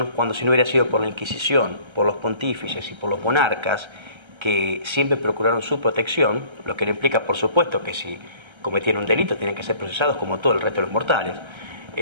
cuando, si no hubiera sido por la Inquisición, por los pontífices y por los monarcas, que siempre procuraron su protección, lo que le implica, por supuesto, que si cometían un delito tienen que ser procesados como todo el resto de los mortales.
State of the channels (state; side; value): late; left; 1.3 ms